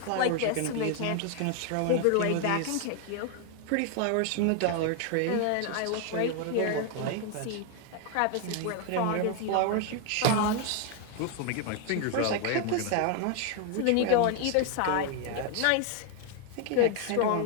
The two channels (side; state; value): both; different; correlation 0.00